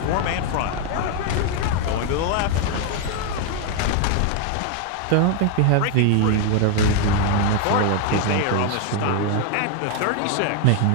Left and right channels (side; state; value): both; different; correlation 0.01